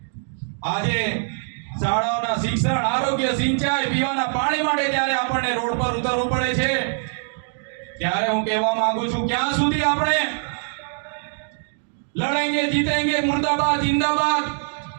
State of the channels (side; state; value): left; silent; digital silence